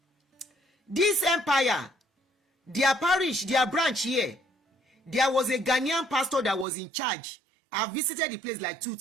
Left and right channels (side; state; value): left; drops out; at 6.7 s